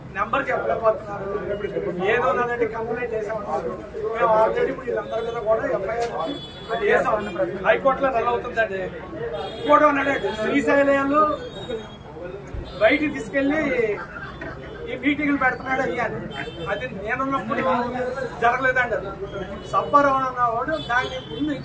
నెంబర్ చెప్పలేకపోతున్నారు. ఏదో ఉన్నదంటే కంప్లైంట్ చేసామన్నారు. మేము ఆల్రెడీ ఇప్పుడు వీళ్ళందరి మీద కూడా ఎఫ్ఐఆర్ చేసాం. హైకోర్టులో రన్ అవుతుందండి. ఇంకోటి ఉన్నాడండి, శ్రీశైలంలో బయటికి తీసుకెళ్లి ఈ మీటింగ్లు పెడుతున్నాడు అయ్యాను. అది నేనున్నప్పుడు జరగలేదండి. అది సబ్బారావు అన్నవాడు దాన్ని ముందు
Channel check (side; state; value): both; identical; correlation 1.00